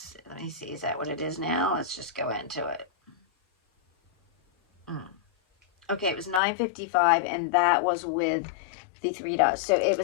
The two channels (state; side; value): drops out; right; at 6.4 s